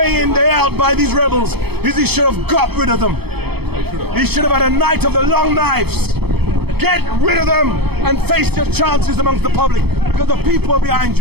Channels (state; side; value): late; left; 0.97 ms